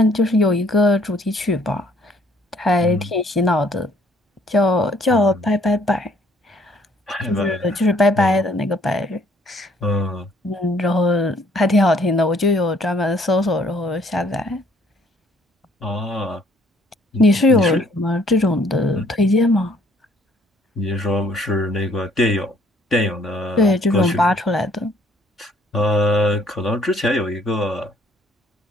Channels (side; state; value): both; normal; correlation 0.62